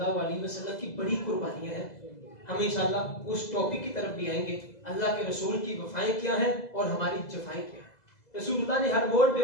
علیہ وسلم کی بڑی قربانیاں ہیں. ہم انشاءاللہ اس ٹاپک کی طرف بھی آئیں گے, اللہ کے رسول کی وفائیں کیا ہیں اور ہماری جفائیں کیا ہیں. رسول اللہ نے ہر موڑ پہ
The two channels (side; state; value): right; late; 2.0 ms